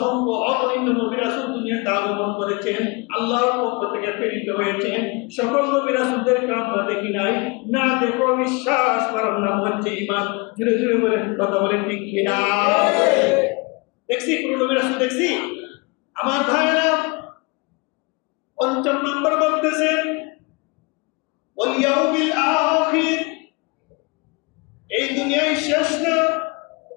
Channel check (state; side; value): quieter; right; 28.4 dB